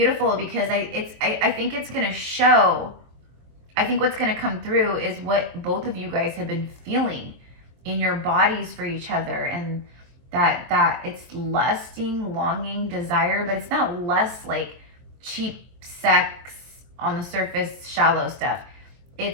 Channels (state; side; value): late; left; 23 ms